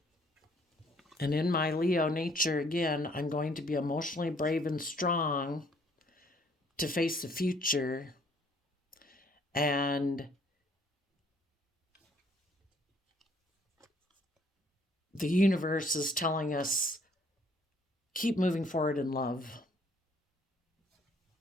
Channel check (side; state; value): both; normal; correlation 0.62